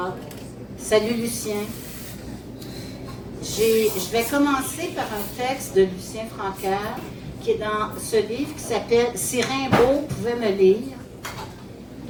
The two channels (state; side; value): identical; both; correlation 1.00